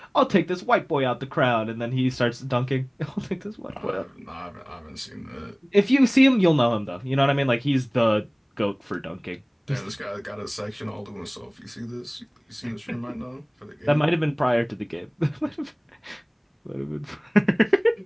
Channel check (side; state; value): both; identical; correlation 1.00